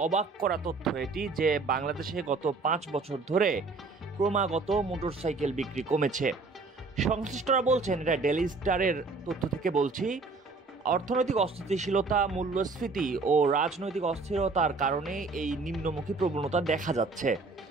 অবাক করা তথ্য এটি যে বাংলাদেশে গত ৫ বছর ধরে ক্রমাগত মোটরসাইকেল বিক্রি কমেছে। সংশ্লিষ্টরা বলছেন, এটা ডেইলি স্টারের তথ্য থেকে বলছি, অর্থনৈতিক অস্থিতিশীলতা, মূল্যস্ফীতি ও রাজনৈতিক অস্থিরতার কারণে এই নিম্নমুখী প্রবণতা দেখা যাচ্ছে।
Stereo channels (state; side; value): quieter; left; 3.9 dB